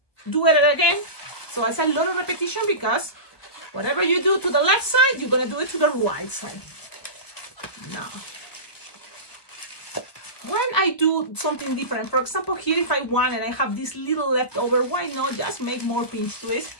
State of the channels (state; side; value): late; right; 1.2 ms